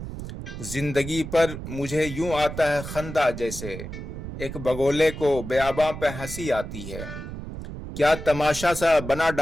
زندگی پر مجھے یوں آتا ہے خندہ جیسے ایک بگولے کو بیاباں پہ ہنسی آتی ہے۔ کیا تماشا سا بنا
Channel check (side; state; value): right; noise; rumble, 9 dB below the sound